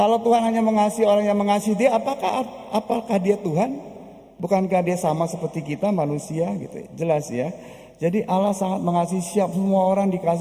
Tuhan hanya mengasihi orang yang mengasihi dia, apakah dia Tuhan? Bukankah dia sama seperti kita manusia gitu? Jelas ya. Jadi Allah sangat mengasihi semua orang,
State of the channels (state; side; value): identical; both; correlation 1.00